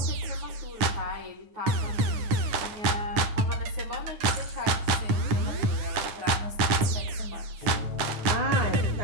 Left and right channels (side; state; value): left; late; 9.5 ms